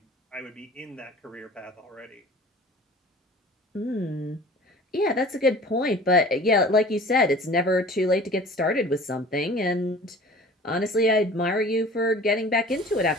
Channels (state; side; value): normal; both; correlation 0.44